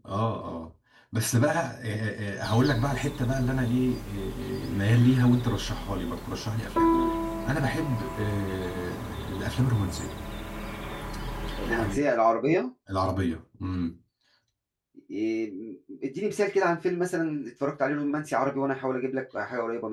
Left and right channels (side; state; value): both; identical; correlation 1.00